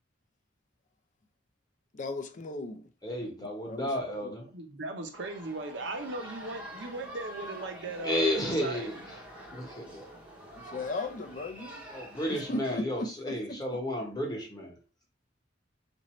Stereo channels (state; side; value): normal; both; correlation 0.39